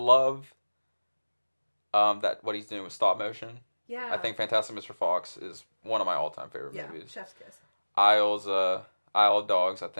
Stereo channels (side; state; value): both; inverted; correlation -1.00